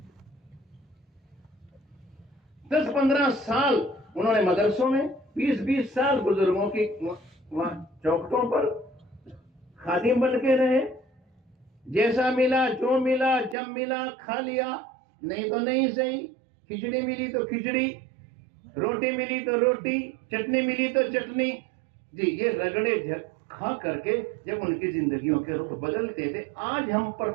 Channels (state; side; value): drops out; left; at 13.6 s